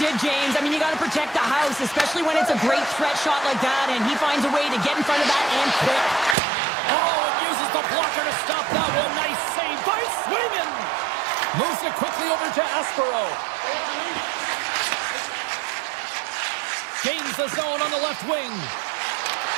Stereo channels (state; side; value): drops out; left; at 6.4 s